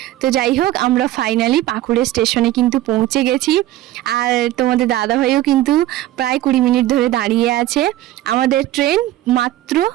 তো যাই হোক, আমরা ফাইনালি পাকুড়ে স্টেশনে কিন্তু পৌঁছে গেছি। আর তোমাদের দাদাভাইও কিন্তু প্রায় 20 মিনিট ধরে দাঁড়িয়ে আছে। আমাদের ট্রেন মাত্র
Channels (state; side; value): quieter; left; 14.9 dB